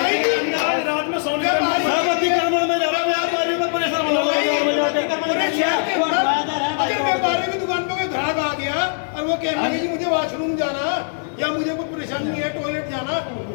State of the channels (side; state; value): right; silent; digital silence